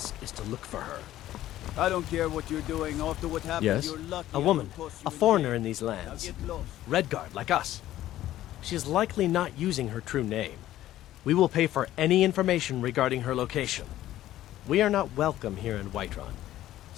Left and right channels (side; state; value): right; quieter; 13.8 dB